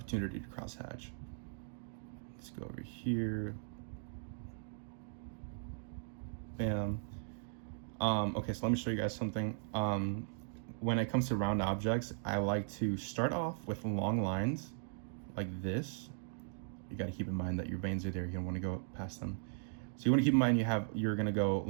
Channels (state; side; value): silent; left; digital silence